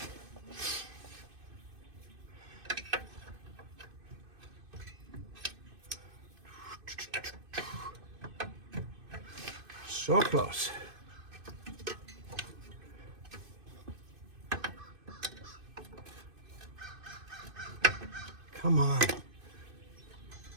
So close. Come on.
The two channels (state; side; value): late; left; 2.5 ms